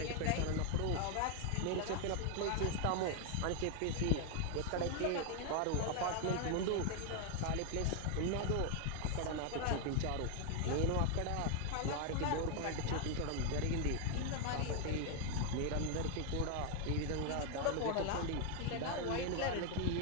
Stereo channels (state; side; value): different; both; correlation 0.00